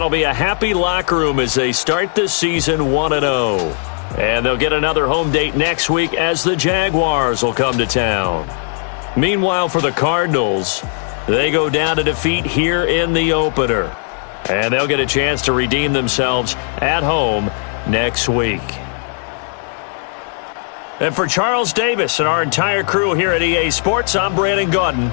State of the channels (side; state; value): right; silent; 57 dB below the other